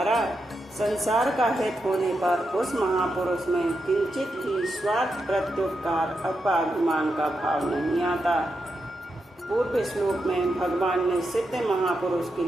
संसार का हित होने पर उस महापुरुष में किंचित भी स्वार्थ, प्रत्युपकार अथवा अभिमान का भाव नहीं आता। पूर्व श्लोक में भगवान ने सिद्ध महापुरुष के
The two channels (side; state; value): both; normal; correlation 0.85